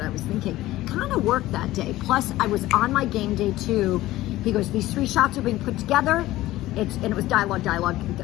I was thinking. Kind of worked that day. Plus, I was on my game day too. He goes, these 3 shots are being put together. And it was dialogue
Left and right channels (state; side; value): quieter; right; 16.4 dB